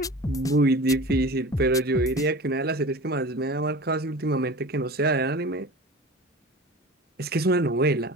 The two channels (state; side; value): normal; both; correlation 0.36